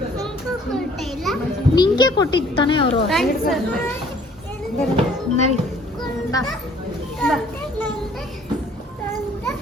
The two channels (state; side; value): normal; both; correlation 0.57